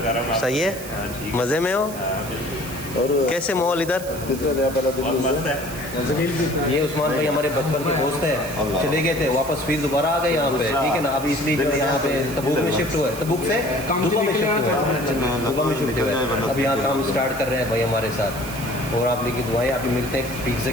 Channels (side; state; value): right; noise; hiss, 13 dB below the sound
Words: सही है, मज़े में हो? और कैसे माहौल इधर? ये उस्मान भाई हमारे बचपन के दोस्त हैं, चले गए थे वापस फिर दोबारा आ गए यहाँ पे, ठीक है ना। अभी इसलिए जो यहाँ पे तबूक में शिफ्ट हुआ है, तबूक से दुबा में शिफ्ट हुआ है, दुबा में शिफ्ट हुआ है। अभी यहाँ काम स्टार्ट कर रहे हैं भाई हमारे साथ, और आप लोग की दुआएं। अभी मिलते हैं पिज़्ज़ा